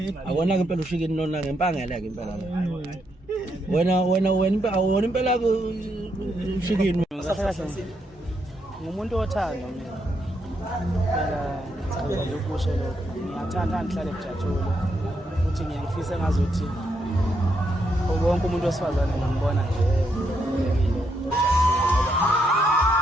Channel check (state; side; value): normal; both; correlation 0.79